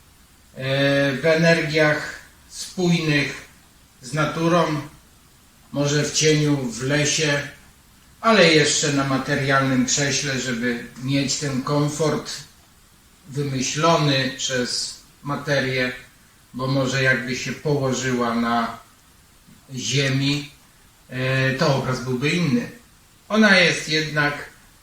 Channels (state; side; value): identical; both; correlation 1.00